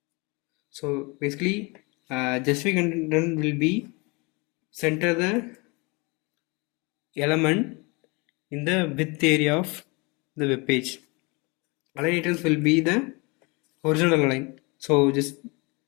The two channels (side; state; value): right; quieter; 28.1 dB